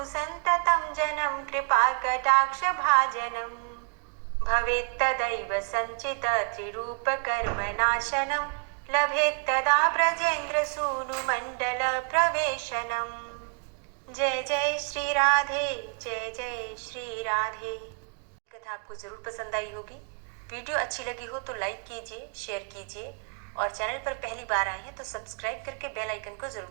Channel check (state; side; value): quieter; left; 39.7 dB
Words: सन्ततं जनं कृपा कटाक्ष भाजनम्। भवेत्तदैव सञ्चित त्रिरूप कर्मनाशनं लभेत्तदा ब्रजेन्द्र सूनु मंडल प्रवेशनम्। जय जय श्री राधे, जय जय श्री राधे। कथा आपको जरूर पसंद आई होगी। वीडियो अच्छी लगी हो तो लाइक कीजिए, शेयर कीजिए और चैनल पर पहली बार आए हैं तो सब्सक्राइब करके बेल आइकन को जरूर